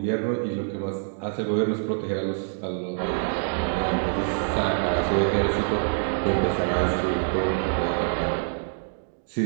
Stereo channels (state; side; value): silent; left; digital silence